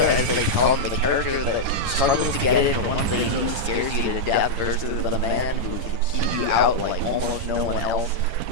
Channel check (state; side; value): late; left; 10 ms